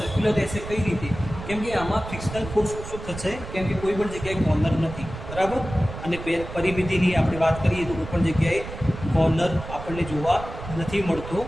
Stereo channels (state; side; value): noise; right; rumble, 10 dB below the sound